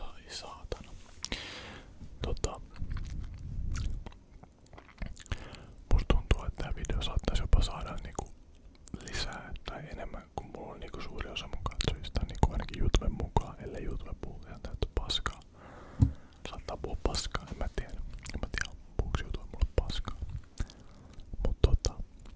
saatana. Musta tuntuu, että tää video saattaisi jopa saada niinku lisää tai enemmän, kun mulla on niinku suuri osa mun katsojista, niinku ainakin YouTuben mukaan, ellei YouTube puhu ihan täyttä paskaa. Saattaa puhua paskaa, en mä tiedä puhuuko YouTube mulle paskaa. Mut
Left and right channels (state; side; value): identical; both; correlation 1.00